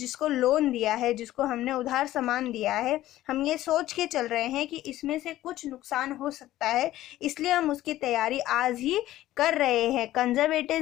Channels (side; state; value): right; quieter; 14.7 dB